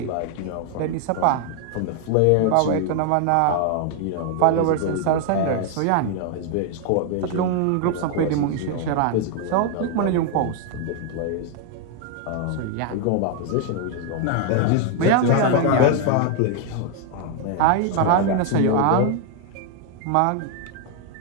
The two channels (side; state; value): both; different; correlation 0.00